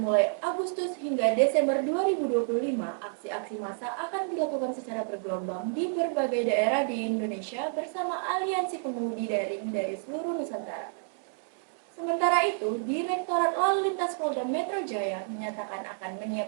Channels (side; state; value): left; silent; digital silence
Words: mulai Agustus hingga Desember 2025, aksi-aksi massa akan dilakukan secara bergelombang di berbagai daerah di Indonesia bersama aliansi pengemudi daring dari seluruh Nusantara. Sementara itu, Direktorat Lalu Lintas Polda Metro Jaya menyatakan akan